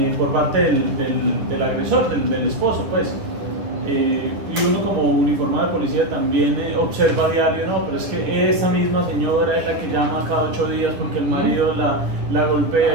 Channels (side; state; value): left; late; 10 ms